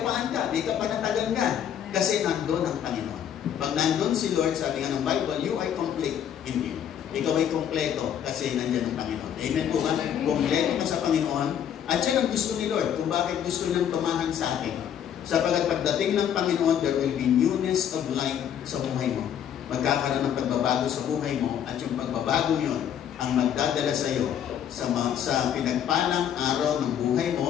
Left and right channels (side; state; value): right; quieter; 9.4 dB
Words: ka, may kapanatagan ka. Kasi nandun ang Panginoon. Pag nandun si Lord, sabi nga ng Bible, you are complete in Him. Ikaw ay kompleto kasi nandyan ang Panginoon. Amen po ba? Kompleto ka sa Panginoon. At yan ang gusto ni Lord kung bakit gusto niyang tumahan sa atin. Sapagat pagdating ng Panginoon, there will be newness of life sa buhay mo. Magkakaroon ng pagbabago sa buhay mo at yung pagbabago yun ang magdadala sa iyo sa pinagpalang araw ng buhay